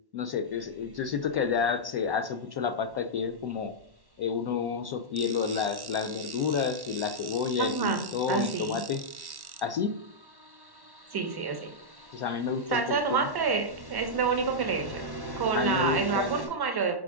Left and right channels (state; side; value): late; left; 1.1 ms